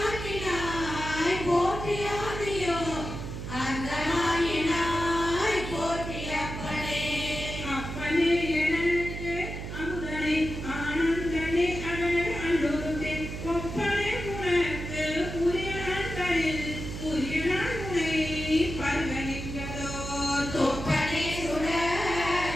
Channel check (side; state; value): right; noise; hum, 7 dB below the sound